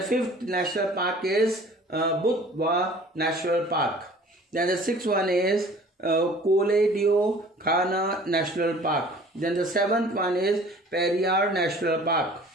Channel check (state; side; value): normal; both; correlation 0.48